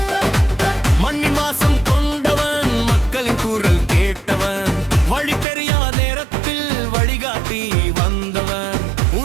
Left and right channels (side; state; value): left; drops out; at 5.5 s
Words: மண்ணின் வாசம் கொண்டவன், மக்களின் குரல் கேட்டவன், வழி தெரியாத நேரத்தில் வழிகாட்டி வந்தவன்,